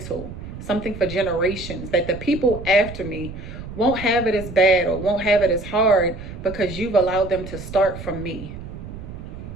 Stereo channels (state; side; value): noise; right; rumble, 11 dB below the sound